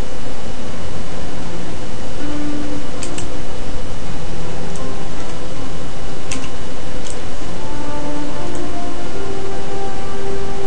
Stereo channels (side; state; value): both; normal; correlation 0.82